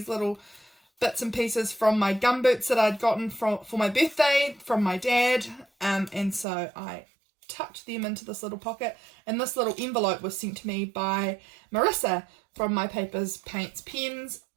little bits and pieces from my gumboots that I'd gotten for my birthday from my dad. And so I tucked them into this little pocket, and this little envelope was sent to me by Marissa from My Papers, Paints, Pens,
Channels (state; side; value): drops out; left; at 6.5 s